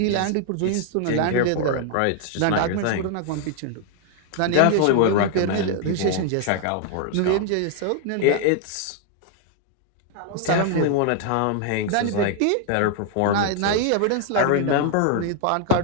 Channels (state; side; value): different; both; correlation 0.00